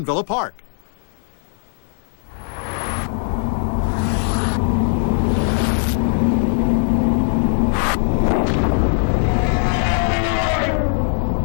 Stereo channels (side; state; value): right; silent; 64 dB below the other